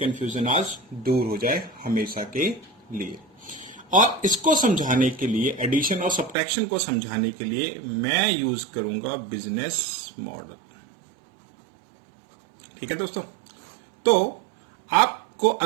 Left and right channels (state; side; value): drops out; left; at 6.4 s